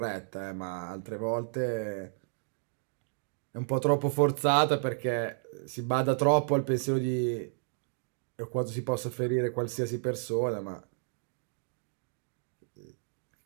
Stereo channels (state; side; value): silent; left; digital silence